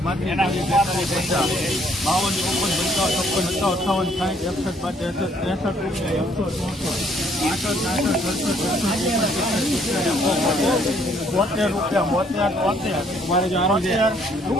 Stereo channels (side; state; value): both; normal; correlation 0.65